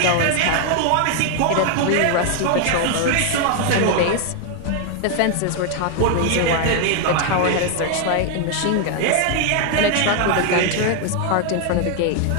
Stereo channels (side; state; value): both; different; correlation 0.00